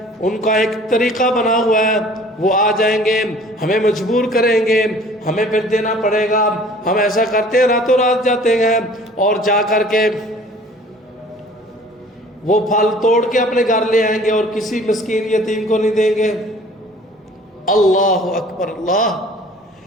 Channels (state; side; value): normal; both; correlation 0.50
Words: ان کا ایک طریقہ بنا ہوا ہے, وہ آ جائیں گے, ہمیں مجبور کریں گے, ہمیں پھر دینا پڑے گا. ہم ایسا کرتے ہیں, راتوں رات جاتے ہیں اور جا کر کے وہ پھل توڑ کے اپنے گھر لے آئیں گے اور کسی مسکین یتیم کو نہیں دیں گے. اللہ اکبر اللہ.